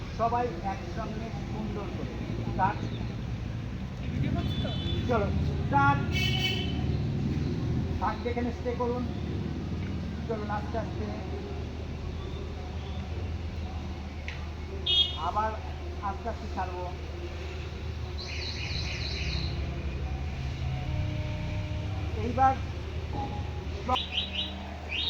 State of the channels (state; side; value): identical; both; correlation 1.00